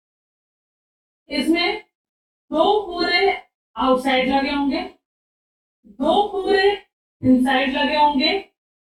इसमें 2 पूरे आउटसाइड लगे होंगे, 2 पूरे इनसाइड लगे होंगे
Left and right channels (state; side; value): identical; both; correlation 1.00